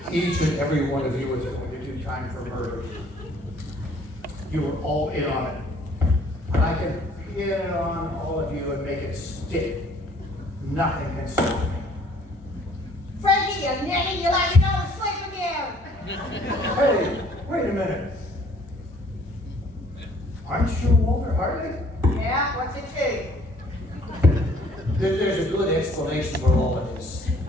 each and every one of you is going to do time for murder. You were all in on it. And I can pin it on all of you and make it stick. Nothing can stop me. Frankie, you nitty, you let me go to sleep again. Hey, wait a minute. Aren't you Walter Hartley? Yeah, what's it to? There's a good explanation for all of this.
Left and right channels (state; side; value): normal; both; correlation 0.58